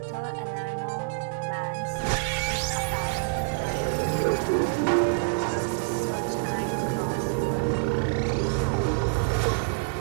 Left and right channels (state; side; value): quieter; left; 32.1 dB